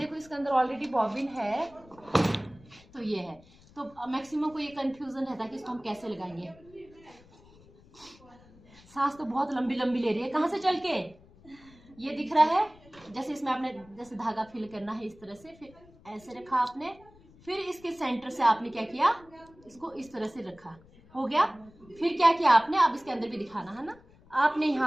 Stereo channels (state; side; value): noise; left; rumble, 25 dB below the sound